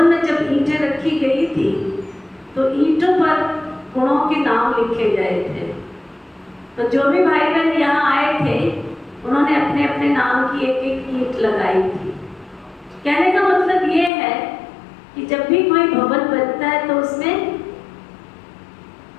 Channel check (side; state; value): right; drops out; at 14.1 s